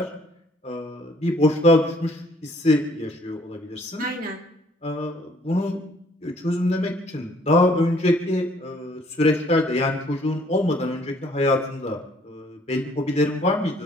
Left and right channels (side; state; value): both; normal; correlation 0.61